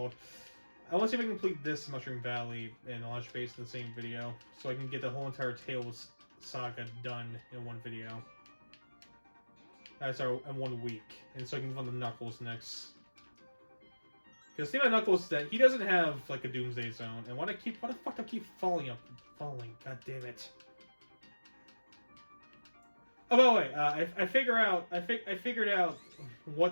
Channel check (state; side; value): inverted; both; correlation -1.00